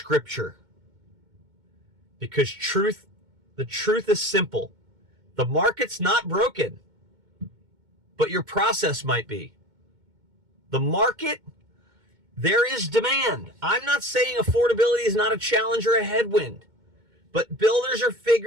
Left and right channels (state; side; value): late; left; 2.2 ms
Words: because the truth is simple. The market's not broken, but your process might be. The market, there is demand. I'm not saying affordability is not a challenge or a headwind, but builders are